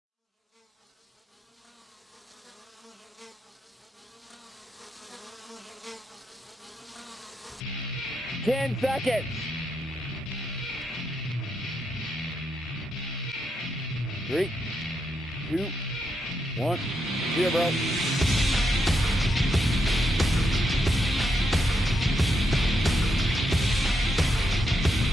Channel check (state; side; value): normal; both; correlation 0.81